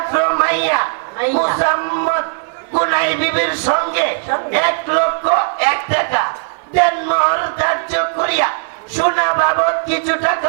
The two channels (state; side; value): silent; left; digital silence